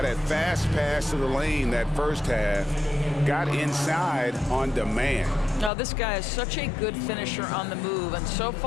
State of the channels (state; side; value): drops out; right; at 5.7 s